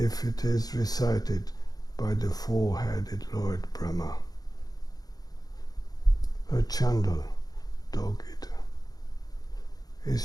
it is recited by the four-headed Lord Brahmā. A chandal, dog-eater,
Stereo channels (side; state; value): right; late; 0.19 ms